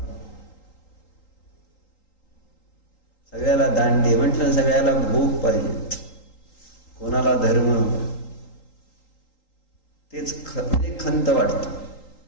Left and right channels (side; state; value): right; late; 3.8 ms